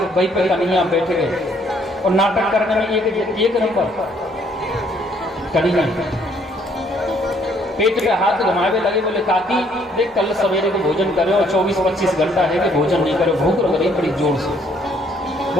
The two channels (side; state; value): both; normal; correlation 0.65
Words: वही पे कन्हैया बैठ गए। और नाटक करने में एक नंबर कन्हैया पेट पे हाथ घुमावे लगे। बोले काकी देख कल सवेरे को भोजन करे और 24-25 घंटा है कि भोजन नहीं करे, भूख लग रही बड़ी जोर से।